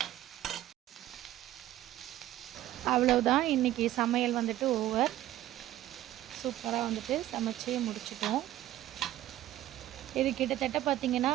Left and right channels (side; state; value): left; quieter; 14.2 dB